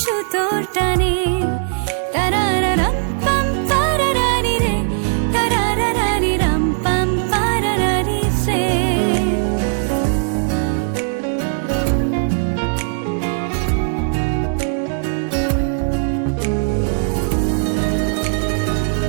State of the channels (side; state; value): left; silent; digital silence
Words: সুতোর টানে। তারারারাম পাম পারারারি রে, তারারারারি রাম পাম পারারারি রে।